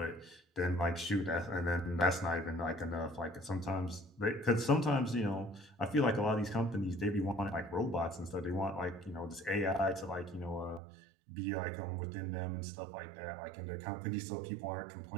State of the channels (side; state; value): left; drops out; at 10.8 s